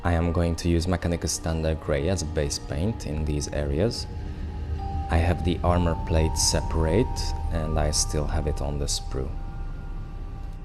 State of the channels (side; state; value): both; identical; correlation 1.00